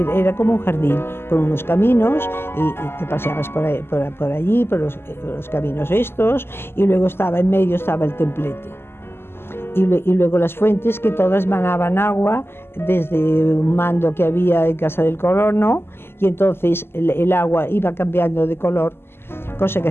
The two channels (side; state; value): right; late; 0.11 ms